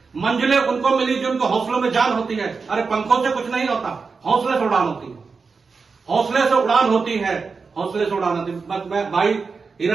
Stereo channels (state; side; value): quieter; left; 4.8 dB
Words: मंजिलें उनको मिली जो उनको हौसलों में जान होती है। अरे पंखों से कुछ नहीं होता, हौसले से उड़ान होती है। हौसले से उड़ान होती है, हौसले से उड़ान होती है। बस मैं भाई